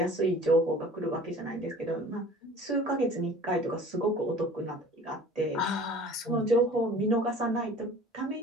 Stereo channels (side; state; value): both; normal; correlation 0.46